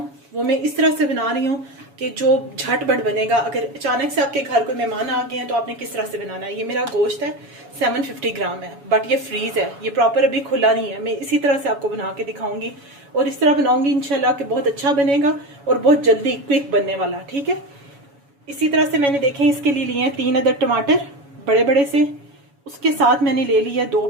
वो मैं इस तरह से बना रही हूँ कि जो झटपट बनेगा। अगर अचानक से आपके घर कोई मेहमान आ गए हैं तो आपने किस तरह से बनाना है। ये मेरा गोश्त है, 750 ग्राम है, बट ये फ्रीज है, ये प्रॉपर अभी खुला नहीं है। मैं इसी तरह से आपको बना के दिखाऊंगी और इस तरह बनाऊंगी इंशाल्लाह कि बहुत अच्छा बनेगा और बहुत जल्दी क्विक बनने वाला। ठीक है, इसी तरह से मैंने देखें इसके लिए हैं 3 अदद टमाटर बड़े बड़े से। उसके साथ मैंने ले लिया 2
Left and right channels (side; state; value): left; late; 7.1 ms